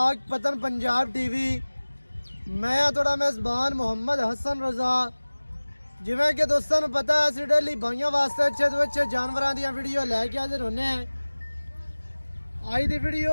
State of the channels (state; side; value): inverted; both; correlation -1.00